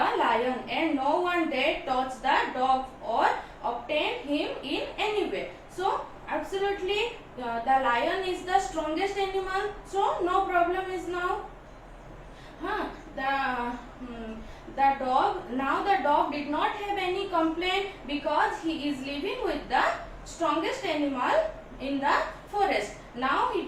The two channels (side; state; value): both; identical; correlation 1.00